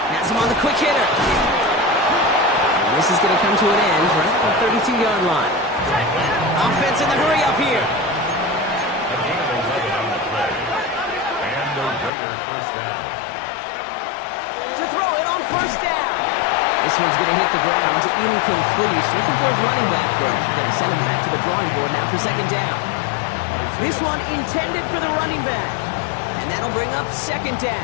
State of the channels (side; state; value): right; drops out; at 12.1 s